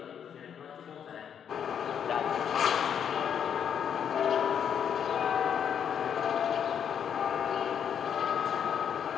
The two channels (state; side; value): quieter; right; 8.3 dB